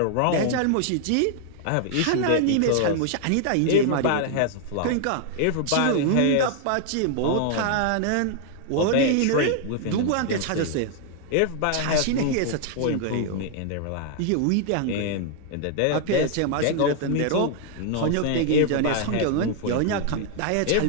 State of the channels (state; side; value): different; both; correlation 0.00